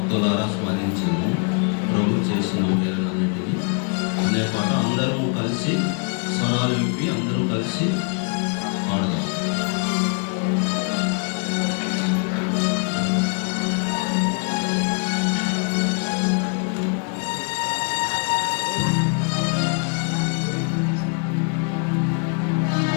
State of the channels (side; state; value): right; quieter; 39.0 dB